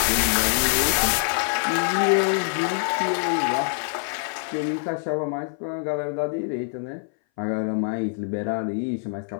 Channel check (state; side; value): silent; right; 59 dB below the other